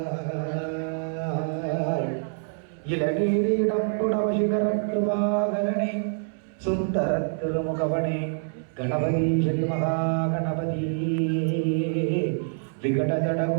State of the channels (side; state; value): left; silent; 61 dB below the other